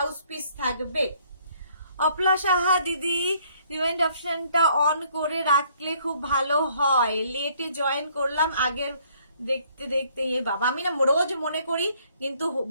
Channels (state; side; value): inverted; both; correlation -0.63